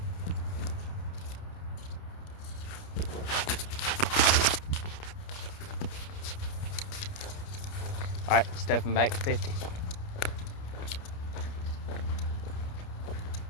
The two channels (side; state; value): right; late; 29 ms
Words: Alright, stepping back to 50.